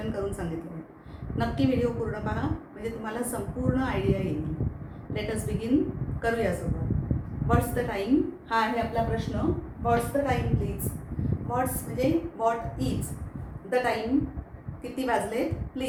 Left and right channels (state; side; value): identical; both; correlation 1.00